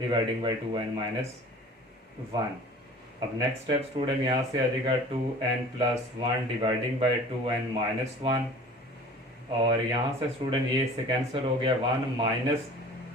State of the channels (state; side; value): normal; both; correlation 0.44